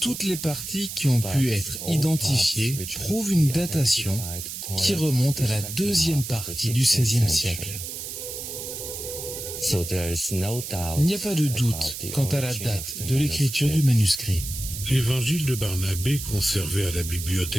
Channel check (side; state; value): right; noise; hiss, 8 dB below the sound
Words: les parties qui ont pu être identifiées prouvent une datation qui remonte à la deuxième partie du XVIe siècle. Il n'y a pas de doute quant à la date de l'écriture du manuscrit. L'évangile de Barnabé, conservé à la